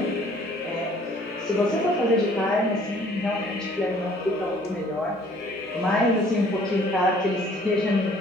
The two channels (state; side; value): normal; both; correlation 0.57